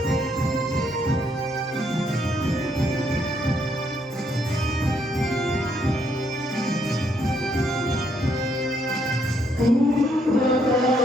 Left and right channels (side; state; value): both; normal; correlation 0.73